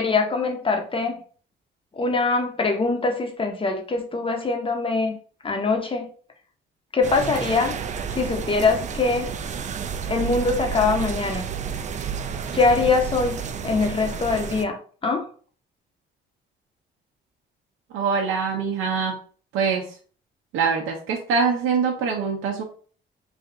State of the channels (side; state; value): both; normal; correlation 0.31